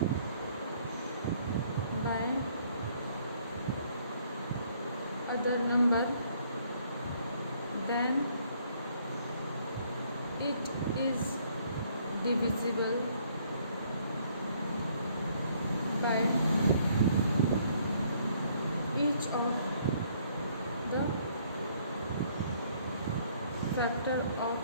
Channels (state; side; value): inverted; both; correlation -0.64